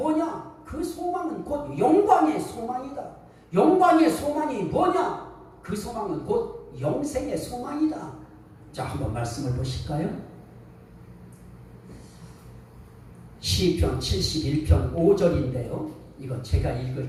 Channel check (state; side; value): identical; both; correlation 1.00